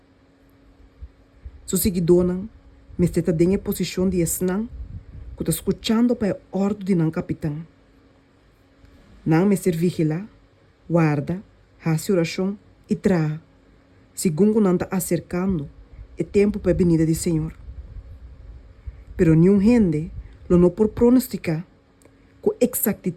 Su seguidor não, me está em posição de esnan, que está escutando para a ordem de não capitão. Não me ser vigila, guarda, hace oração e traga, segundo não está acercando o tempo para a venida do Senhor. Pero nenhum gente lo não por pronosticar com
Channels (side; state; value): both; identical; correlation 1.00